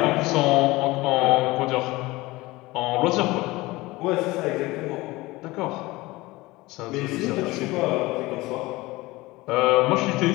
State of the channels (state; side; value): quieter; right; 20.6 dB